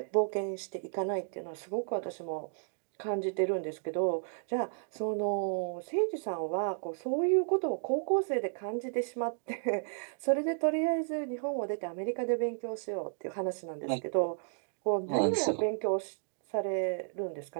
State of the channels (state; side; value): silent; left; digital silence